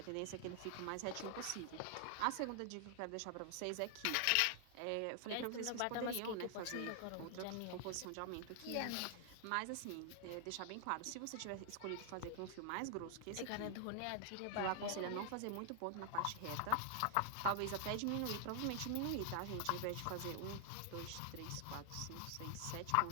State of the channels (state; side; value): different; both; correlation 0.00